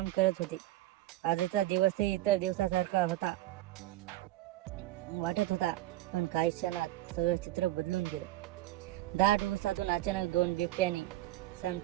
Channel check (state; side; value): quieter; left; 16.0 dB